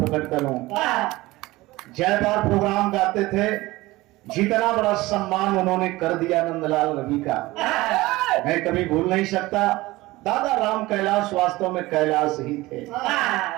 करूं। जयबार प्रोग्राम गाते थे, जितना बड़ा सम्मान उन्होंने कर दिया नंदलाल रवि का, मैं कभी भूल नहीं सकता। दादा राम कैलाश वास्तव में कैलाश ही थे।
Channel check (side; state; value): left; quieter; 19.5 dB